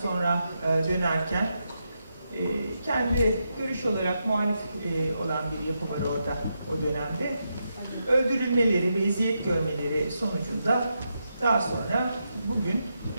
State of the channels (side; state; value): both; inverted; correlation -0.84